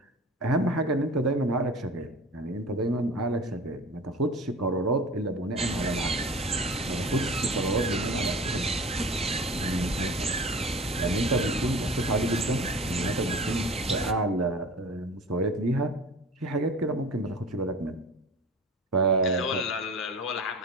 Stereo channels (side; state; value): both; normal; correlation 0.38